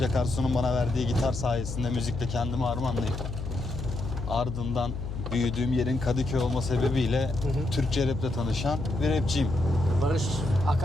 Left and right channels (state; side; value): noise; left; hum, 6 dB below the sound